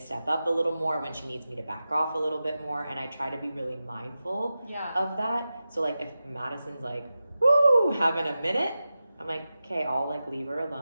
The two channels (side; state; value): both; inverted; correlation -0.93